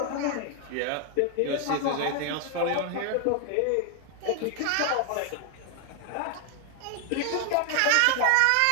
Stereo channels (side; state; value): both; different; correlation 0.00